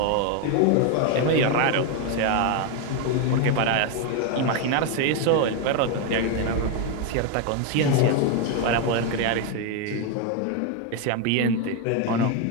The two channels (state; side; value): different; both; correlation 0.01